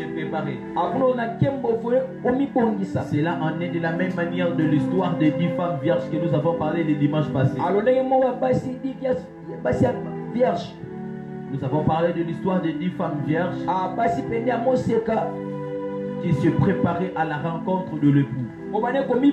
préparer. Cela en est de la même manière de l'histoire des 10 femmes vierges que nous avons parlé le dimanche passé. Nous avons parlé de l'histoire des 10 femmes vierges qui se préparaient à la rencontre de l'époux.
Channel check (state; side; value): identical; both; correlation 1.00